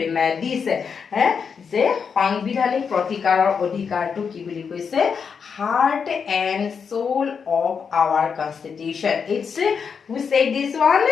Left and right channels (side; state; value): right; quieter; 6.2 dB